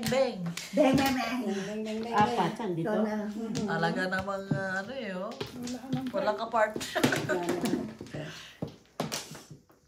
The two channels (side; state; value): both; identical; correlation 1.00